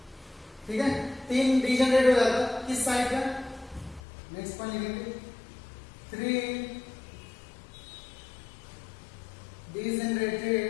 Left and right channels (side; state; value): right; drops out; at 4.0 s